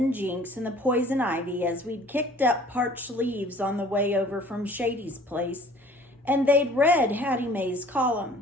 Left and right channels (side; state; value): both; normal; correlation 0.51